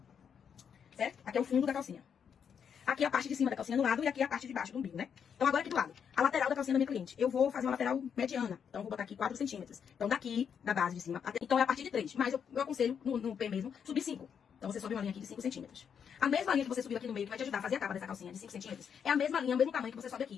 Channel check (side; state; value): right; quieter; 7.5 dB